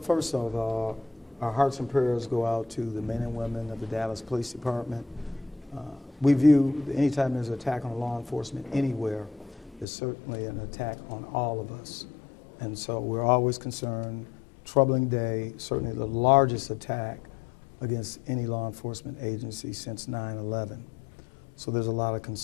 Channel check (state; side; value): drops out; right; at 9.9 s